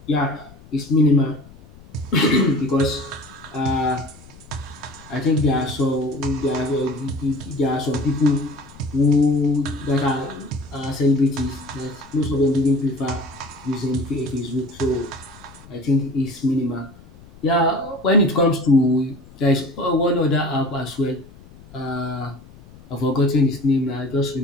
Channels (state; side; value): noise; left; rumble, 22 dB below the sound